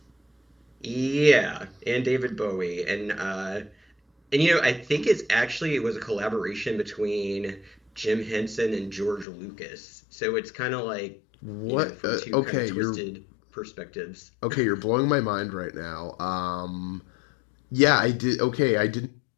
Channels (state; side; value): drops out; right; at 9.2 s